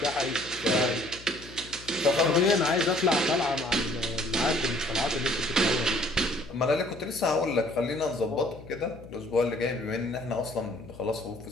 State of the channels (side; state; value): left; noise; hum, 18 dB below the sound